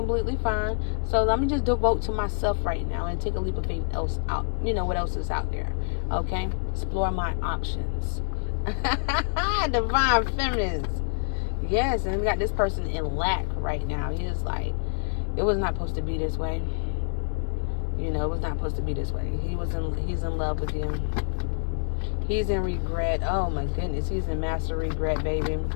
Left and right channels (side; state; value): right; silent; digital silence